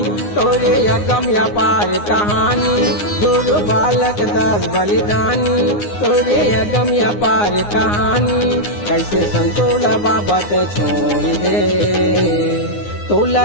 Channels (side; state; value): right; late; 9.7 ms